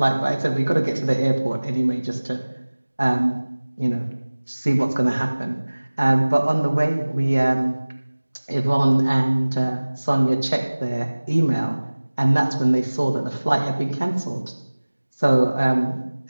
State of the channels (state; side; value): inverted; both; correlation -1.00